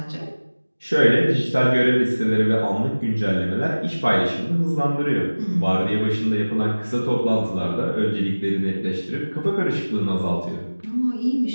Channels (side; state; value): both; inverted; correlation -1.00